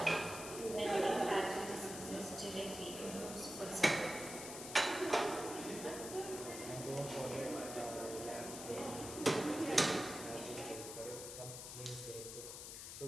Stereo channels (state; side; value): noise; left; hiss, 8 dB below the sound